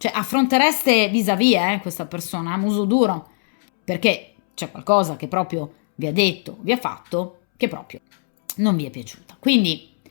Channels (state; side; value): silent; right; 65 dB below the other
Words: affrontereste vis-à-vis questa persona a muso duro, perché c'è qualcosa che proprio vi ha detto, vi ha fatto, che proprio non vi è piaciuta. Quindi